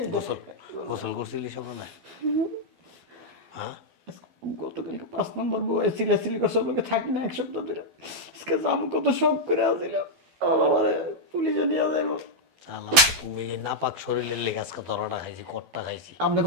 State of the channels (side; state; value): left; late; 12 ms